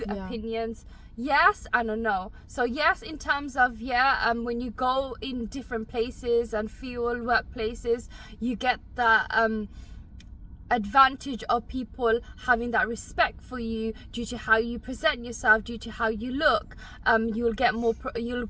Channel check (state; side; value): identical; both; correlation 1.00